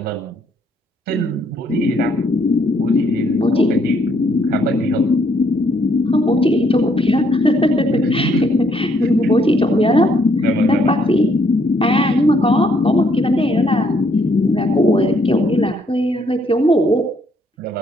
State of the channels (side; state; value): both; normal; correlation 0.69